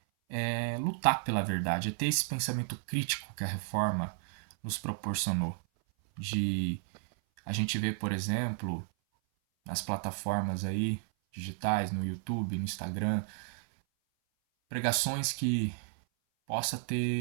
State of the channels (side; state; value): left; silent; 56 dB below the other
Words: é lutar pela verdade, é ter esse pensamento crítico que a reforma nos proporcionou. De a gente ver, por exemplo, nas plataformas aí digitais, no YouTube, no Instagram, pregações que possa